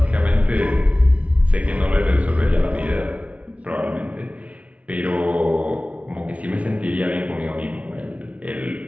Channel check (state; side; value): late; left; 0.065 ms